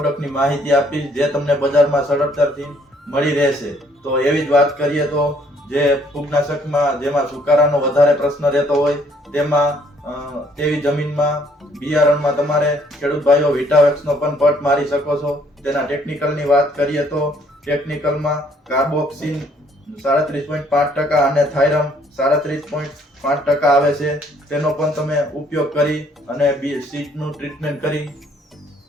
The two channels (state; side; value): normal; both; correlation 0.64